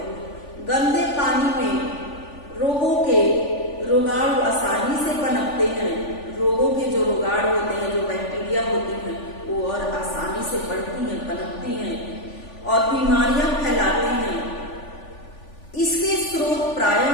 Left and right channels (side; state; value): right; late; 3.5 ms